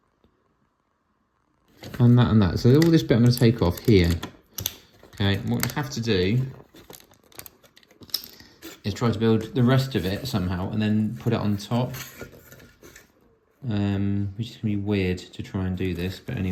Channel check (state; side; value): identical; both; correlation 1.00